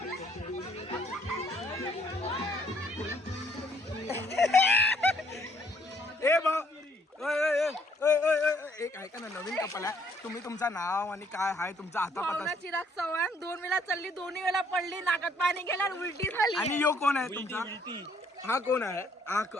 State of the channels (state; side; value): normal; both; correlation 0.65